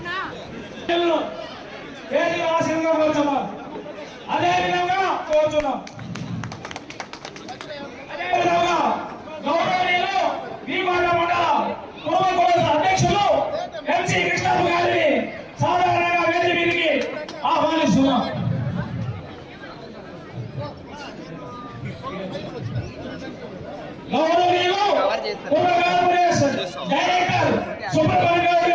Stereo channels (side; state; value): both; identical; correlation 1.00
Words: వేదిక ఆశీర్వాదంగా కోరుతున్నాం. అదేవిధంగా కోరుతున్నాం. అదేవిధంగా గౌరవనీయులు భీమవరం మండల కుటుంబ అధ్యక్షులు ఎంసీ కృష్ణప్ప గారిని సాధారణంగా వేదిక మీదకి ఆహ్వానిస్తున్నాం. గౌరవనీయులు పూర్వ కార్పొరేషన్ డైరెక్టర్ సుబ్రహ్మణ్య గౌడ్